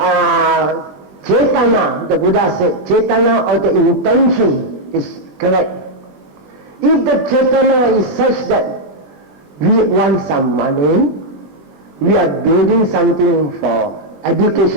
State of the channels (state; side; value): late; left; 20 ms